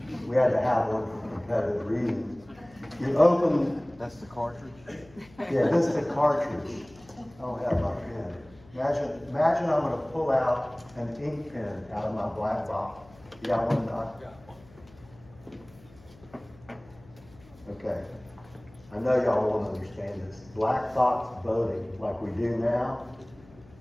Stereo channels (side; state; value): left; noise; hum, 25 dB below the sound